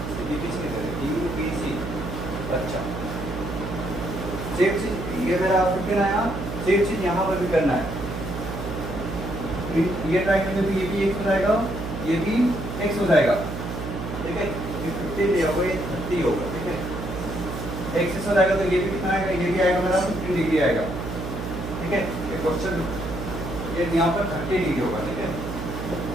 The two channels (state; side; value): noise; right; hum, 6 dB below the sound